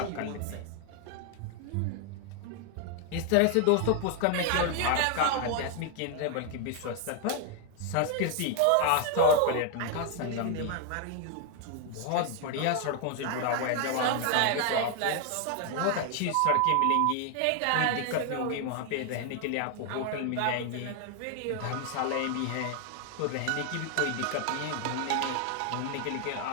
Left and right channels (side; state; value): both; different; correlation 0.00